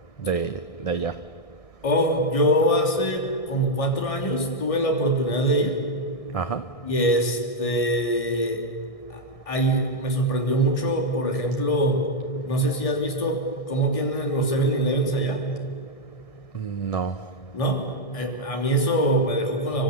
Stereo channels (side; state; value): right; late; 1.6 ms